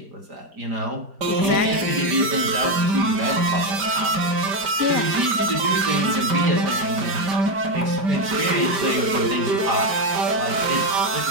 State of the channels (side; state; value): left; late; 5.1 ms